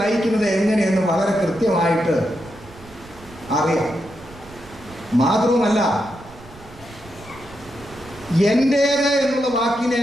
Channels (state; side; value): noise; right; rumble, 21 dB below the sound